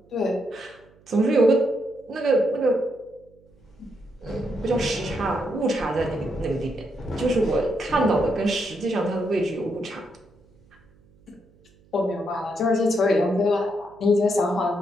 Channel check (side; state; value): right; noise; hum, 30 dB below the sound